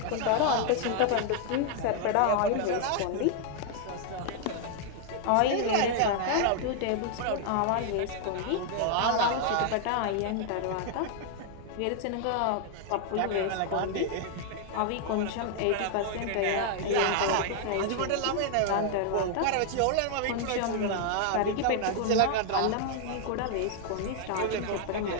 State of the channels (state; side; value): different; both; correlation 0.00